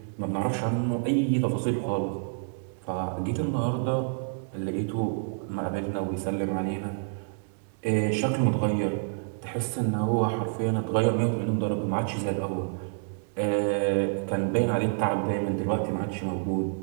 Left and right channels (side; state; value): left; silent; 59 dB below the other